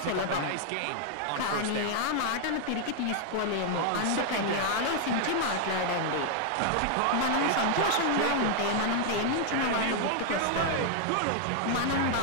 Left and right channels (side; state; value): both; different; correlation 0.00